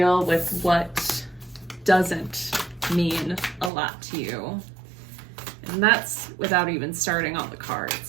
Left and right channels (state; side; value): drops out; left; at 3.7 s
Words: with what doesn't mean a lot to you. And that's without even starting on the